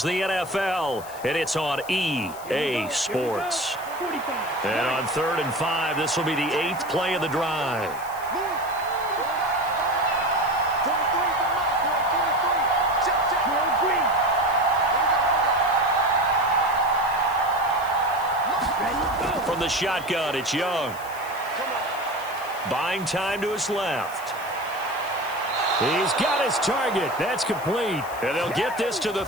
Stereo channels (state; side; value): noise; left; hiss, 17 dB below the sound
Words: the NFL, and it's on EA Sports. And on 3rd and 5, this will be the 8th play of the drive. From the shotgun, it's Young. Buying time to his left. He's got his target. That's complete. And they'll get this to the